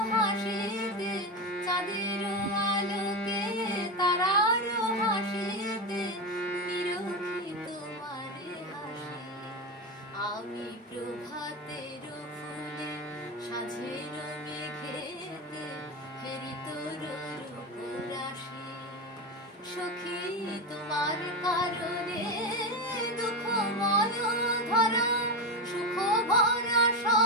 হাসিতে চাঁদের আলোকে তারার হাসিতে নিরখি তোমার হাসি আমি প্রভাতের ফুলে সাঁঝের মেঘেতে হেরি তোর রূপরাশি সখী তোমার কারণে দুঃখময় ধরা সুখ ভরা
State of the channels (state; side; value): normal; both; correlation 0.16